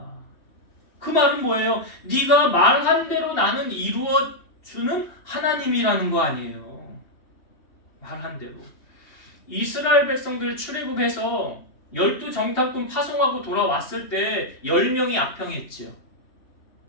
그 말은 뭐예요? 네가 말한 대로 나는 이루어주는 하나님이라는 거 아니에요. 말한 대로. 이스라엘 백성들 출애굽해서 12정탐꾼 파송하고 돌아왔을 때 10명이 악평했지요.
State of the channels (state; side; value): late; right; 3.5 ms